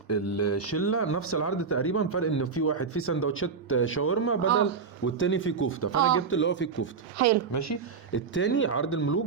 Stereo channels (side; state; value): left; quieter; 5.5 dB